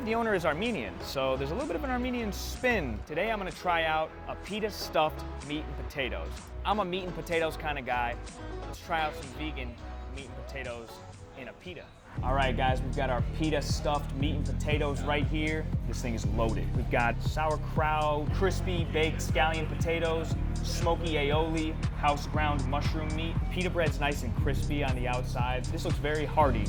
the owner is Armenian, so there's a little bit of an Armenian spin. Today I'm gonna try out a pita stuffed meat and potatoes. I'm a meat and potatoes kind of guy. Let's try out some vegan meat and potatoes in a pita. All right, guys, we've got our pita stuffed meat and potatoes right here. This thing is loaded. We've got sauerkraut, crispy baked scallion potatoes, smoky aioli, house ground mushroom meat. Pita bread's nice and crispy on the outside. This looks very hearty,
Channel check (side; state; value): both; identical; correlation 1.00